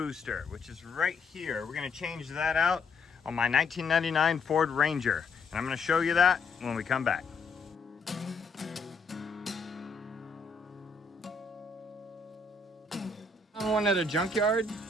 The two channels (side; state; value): right; quieter; 4.0 dB